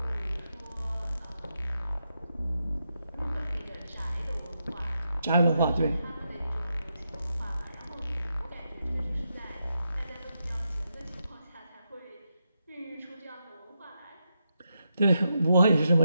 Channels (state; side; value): inverted; both; correlation -0.84